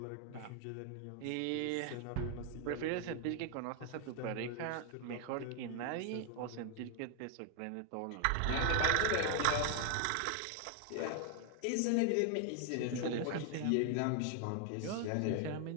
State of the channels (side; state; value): both; different; correlation 0.00